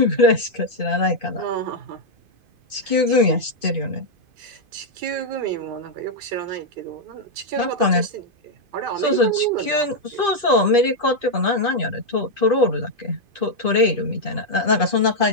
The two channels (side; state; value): left; late; 2.5 ms